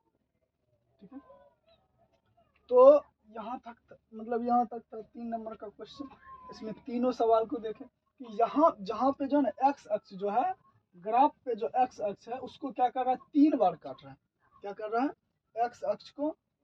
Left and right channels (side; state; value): both; identical; correlation 1.00